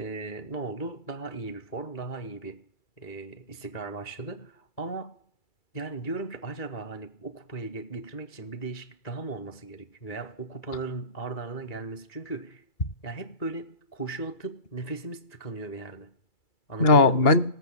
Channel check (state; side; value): late; right; 2.3 ms